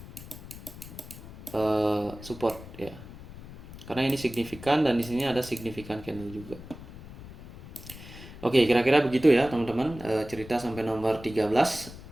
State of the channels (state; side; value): noise; left; rumble, 15 dB below the sound